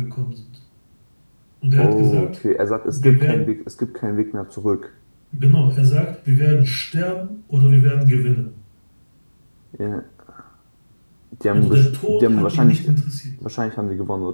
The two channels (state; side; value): inverted; both; correlation -1.00